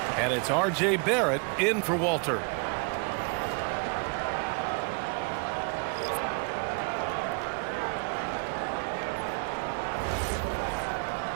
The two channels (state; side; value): quieter; left; 34.7 dB